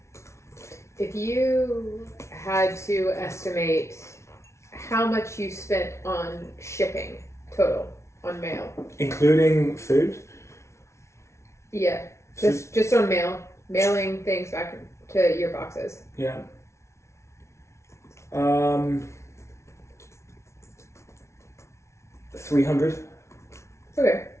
If you had to estimate how much you spent on shipping total on mail, including food? Yeah, just on mailing things back to your boxes. Yeah. 300. Okay.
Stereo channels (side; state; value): right; late; 0.13 ms